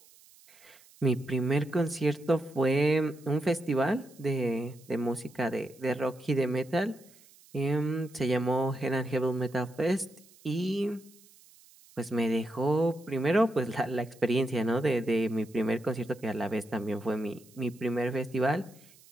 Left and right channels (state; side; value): noise; right; hiss, 26 dB below the sound